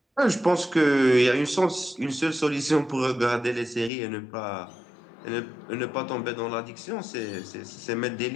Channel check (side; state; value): right; drops out; at 3.9 s